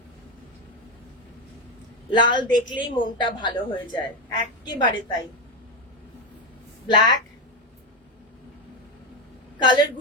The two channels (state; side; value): normal; both; correlation 0.10